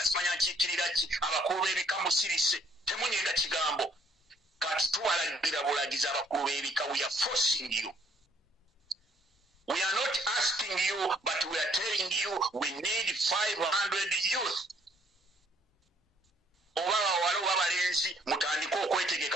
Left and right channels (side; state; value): both; normal; correlation 0.64